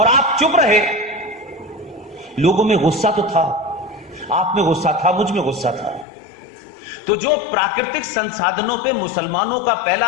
आप चुप रहे। लोगों में गुस्सा तो था, आप में गुस्सा था, मुझ में गुस्सा था। तो जो प्राकृतिक संसाधनों पे मुसलमानों का पहला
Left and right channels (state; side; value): drops out; right; at 6.1 s